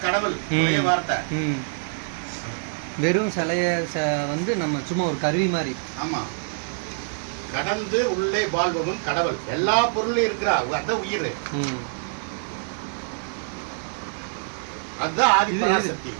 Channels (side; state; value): left; silent; digital silence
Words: கடவுள், ஒரே வார்த்தை. வெறும் சிலைய வந்து நம்ம சும்மா ஒரு கருவி மாதிரி. ஆமா. கடந்து உள்ளே வாழ்பவன் கடவுள். எல்லா பொருளும் இருக்கிறா, அதான் உயிர். அதுதான் ஆதிபராசக்தி.